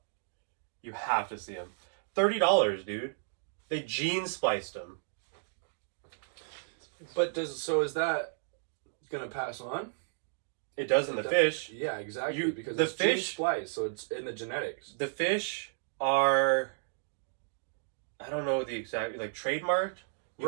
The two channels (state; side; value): silent; left; digital silence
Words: You have to see them. $30, dude. They gene spliced them. But is that gonna pass on? It does in the fish. Yeah, exactly. Because the it's fish gene spliced, so it's in the genetics. The fish are, I don't know the exact, like, trademarked.